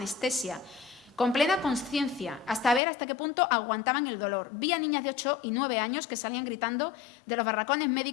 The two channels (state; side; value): drops out; right; at 2.8 s